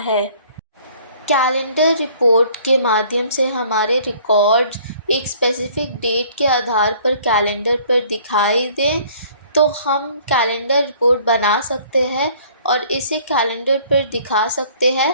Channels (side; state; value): both; inverted; correlation -0.55